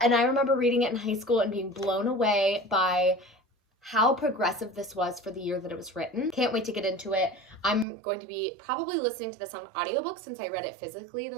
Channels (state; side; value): drops out; left; at 7.9 s